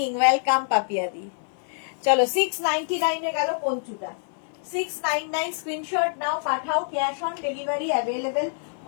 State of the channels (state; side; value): silent; right; 57 dB below the other